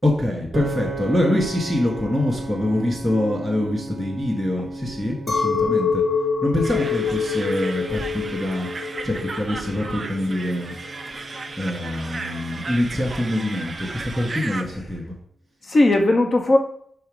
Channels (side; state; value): both; normal; correlation 0.88